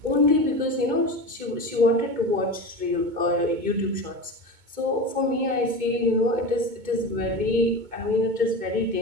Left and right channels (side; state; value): left; late; 2.2 ms